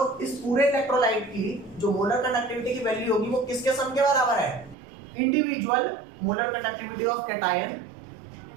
इस पूरे इलेक्ट्रोलाइट की जो मोलर कंडक्टिविटी की वैल्यू होगी वो किसके सम के बराबर है, individual molar conductivity of cation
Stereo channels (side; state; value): left; drops out; at 4.8 s